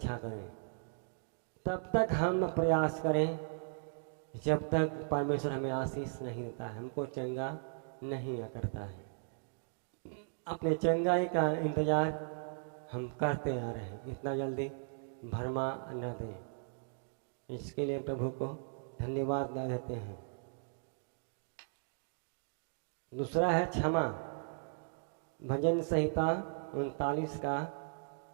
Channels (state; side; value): silent; left; digital silence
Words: करें, तब तक हम प्रयास करें जब तक परमेश्वर हमें आशीष नहीं देता है, हमको चंगा नहीं करता है। अपने चंगाई का इंतजार हम करते आ रहे हैं, इतना जल्दी भरमा न दें। इसके लिए प्रभु को धन्यवाद देते हैं। दूसरा है क्षमा। भजन संहिता 39 का